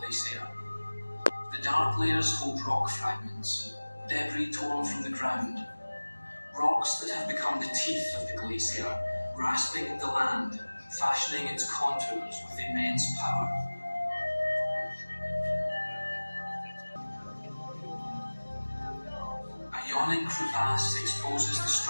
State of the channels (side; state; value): both; inverted; correlation -1.00